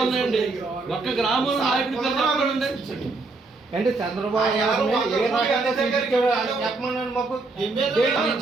ఉన్నాయండి. ఒక్క గ్రామంలో నాయకుడి పేరు చెప్పండి. అంటే చంద్రబాబు చెప్పమన్నాను మాకు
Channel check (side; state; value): left; quieter; 3.6 dB